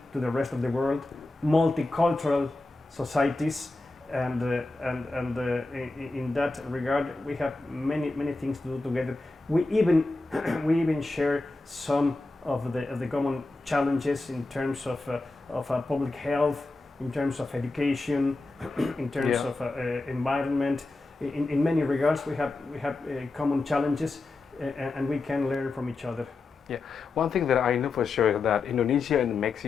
to the rest of the world, multicultural societies, and in that regard we have many things to do together. We even share some of the common challenges in terms of public health, in terms of education, in terms Yeah. of environment. In many regards, we have common challenges, and we can learn from each other. One thing that I know for sure is that Indonesia and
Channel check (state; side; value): quieter; right; 3.3 dB